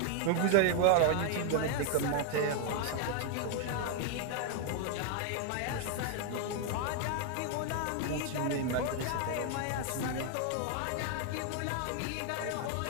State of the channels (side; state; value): both; different; correlation 0.00